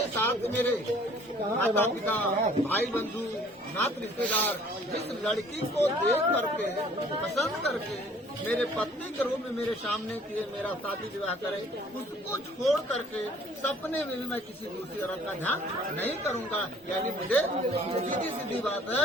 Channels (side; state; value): both; normal; correlation 0.55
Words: साथ मेरे माता पिता भाई बंधु नात रिश्तेदार जिस लड़की को देख करके पसंद करके मेरे पत्नी के रूप में मेरे सामने किए मेरा शादी विवाह करे उसको छोड़ करके सपने में भी मैं किसी दूसरी औरत का ध्यान नहीं करूंगा। यानी मुझे सीधी सीधी बात है